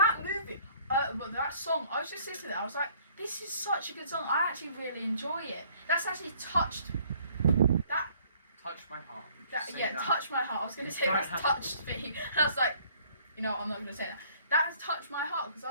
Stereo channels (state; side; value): inverted; both; correlation -0.59